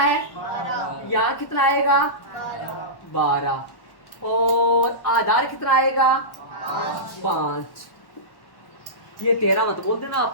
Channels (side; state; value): right; late; 1.1 ms